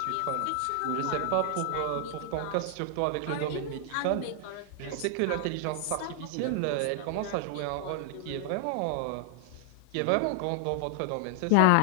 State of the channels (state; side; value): different; both; correlation 0.00